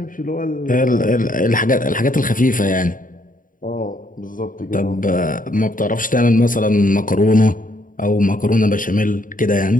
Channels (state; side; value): late; right; 0.39 ms